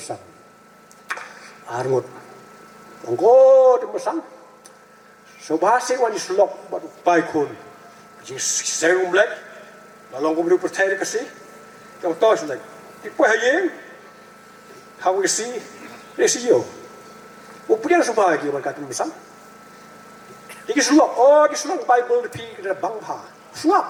arngot ongko tu mesan so bahasa wani slok baru baikun Jingseng mulai lalu kau percaya kasih yang tahu sudah tipu hayeng how we see resio upian supaya kita berkata misal ini sulok di sulok Bible di kita bangpa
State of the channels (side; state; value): both; identical; correlation 1.00